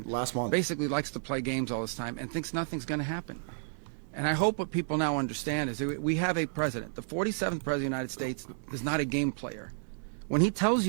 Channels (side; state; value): left; silent; digital silence